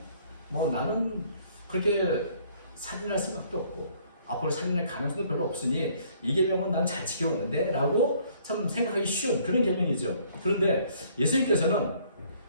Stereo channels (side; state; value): both; inverted; correlation -0.61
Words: 나는 그렇게 살인할 생각도 없고 앞으로 살인할 가능성도 별로 없으니 이 계명은 난 잘 지켜왔는데 라고 참 생각하기 쉬운 그런 계명이죠. 그런데 예수님께서는